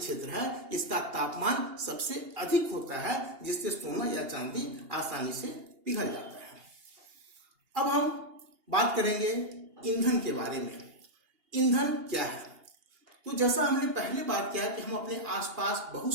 है इसका तापमान सबसे अधिक होता है, जिससे सोना या चांदी आसानी से पिघल जाता है। अब हम बात करेंगे ईंधन के बारे में। ईंधन क्या है? तो जैसा हमने पहले बात किया कि हम अपने आसपास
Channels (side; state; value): left; late; 2.8 ms